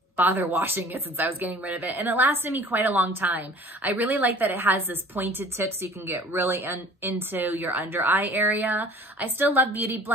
bother washing it since I was getting rid of it, and it lasted me quite a long time. I really like that it has this pointed tip so you can get really into your under eye area. I still love beauty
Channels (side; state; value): both; normal; correlation 0.48